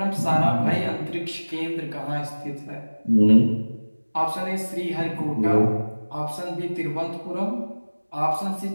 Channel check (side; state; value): both; inverted; correlation -1.00